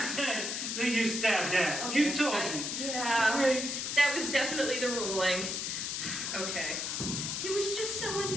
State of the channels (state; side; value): noise; left; hiss, 2 dB below the sound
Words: said that you stabbed Dad. Okay, You told me. Yeah. Right. That was definitely the ruling. Okay. He was just so